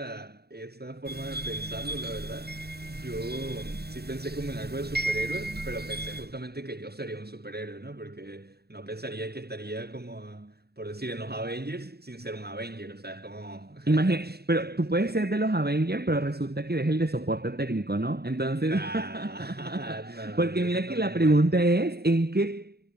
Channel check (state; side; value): late; left; 0.47 ms